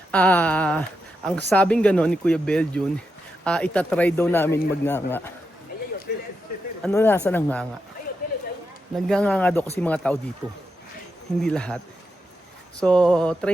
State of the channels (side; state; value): both; normal; correlation 0.86